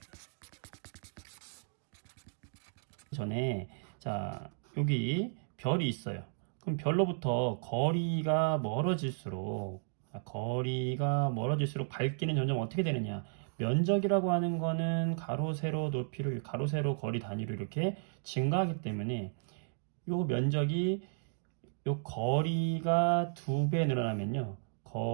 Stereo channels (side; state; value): left; silent; digital silence